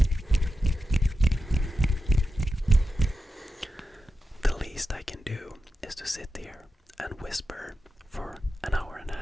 The least I can do is to sit here and whisper for an hour and a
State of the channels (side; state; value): both; normal; correlation 0.91